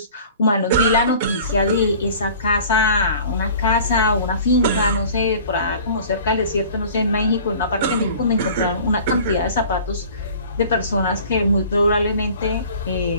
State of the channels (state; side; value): inverted; both; correlation -0.45